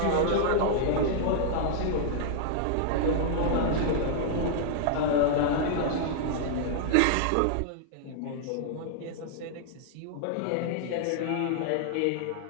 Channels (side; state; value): both; different; correlation -0.01